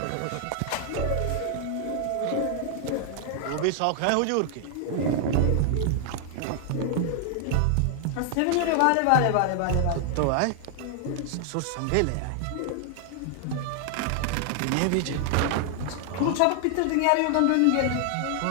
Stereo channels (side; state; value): both; different; correlation 0.00